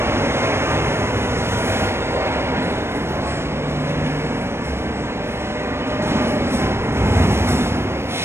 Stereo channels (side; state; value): left; late; 0.12 ms